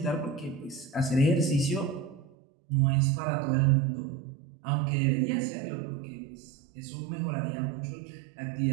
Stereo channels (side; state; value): left; drops out; at 2.2 s